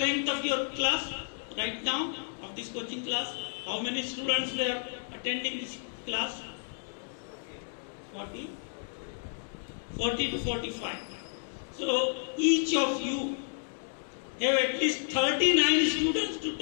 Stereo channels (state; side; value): silent; right; digital silence